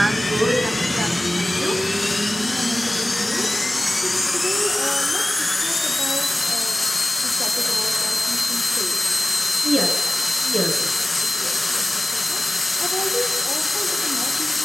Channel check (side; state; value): both; normal; correlation 0.97